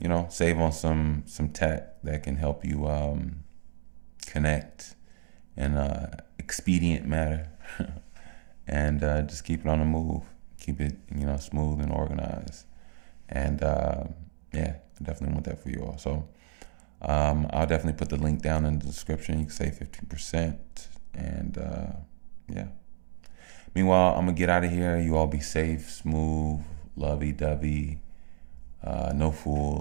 save on some tech that can help you connect in expedient manner and just keep it on the move. Keep it, smooth and organized. And yeah, I definitely want that for you all. So I'll definitely put the link down in the description. You can save 15%. And yeah. Meanwhile, I'm going to get out of here. You all be safe, smooth, lovey-dovey, no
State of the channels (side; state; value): left; silent; digital silence